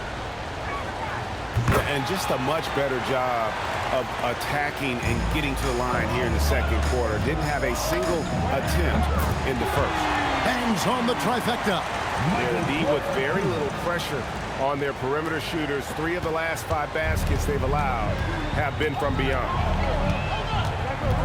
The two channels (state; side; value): identical; both; correlation 1.00